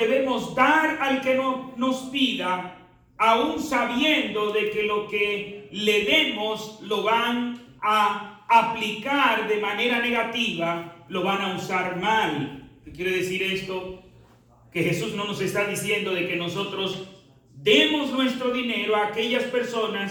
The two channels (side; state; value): both; identical; correlation 1.00